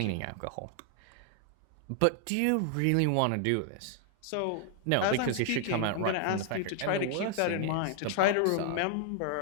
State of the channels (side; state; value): both; different; correlation 0.00